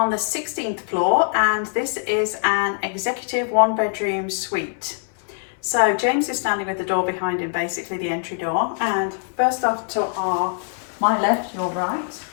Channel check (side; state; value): right; silent; 63 dB below the other